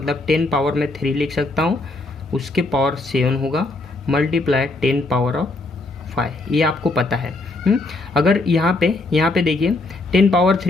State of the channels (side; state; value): right; quieter; 3.0 dB